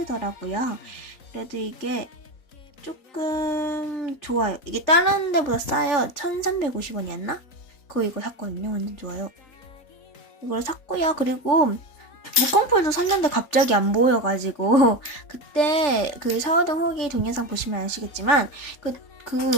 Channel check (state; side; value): late; right; 3.4 ms